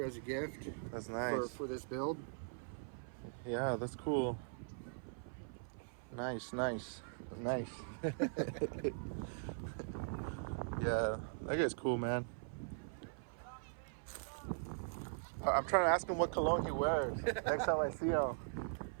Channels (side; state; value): left; silent; 51 dB below the other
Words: as a gift. That's nice. For this build. Yeah, that's cool. Nice. Yeah, that guy's cool, man. I'm trying to ask him what cologne he wears next time I see him.